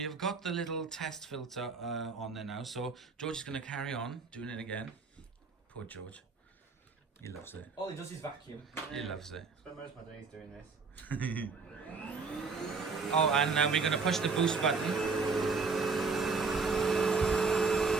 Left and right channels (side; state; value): left; quieter; 4.6 dB